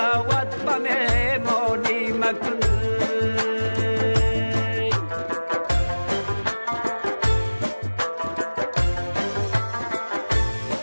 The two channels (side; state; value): both; inverted; correlation -1.00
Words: به مهمانی مکن.